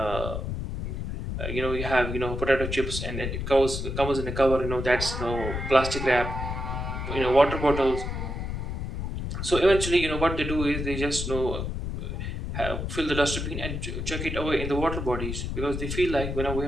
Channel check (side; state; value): left; noise; rumble, 4 dB below the sound